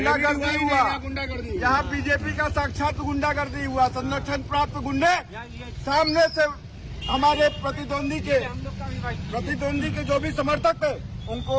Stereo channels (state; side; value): identical; both; correlation 1.00